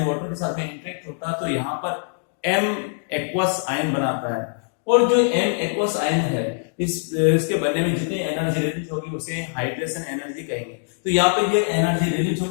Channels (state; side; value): silent; right; digital silence